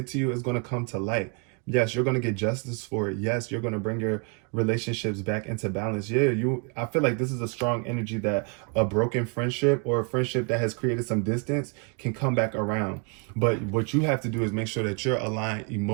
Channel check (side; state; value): left; quieter; 35.0 dB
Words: to you is going to come to light. Yes, you're going to get justice for it. Yes, you're going to bring your relationships back into balance. Yeah, I feel like this is a strong energy that a broken friendship or a friendship that has created some distance can come back around. But what you have to do is make sure that you're aligned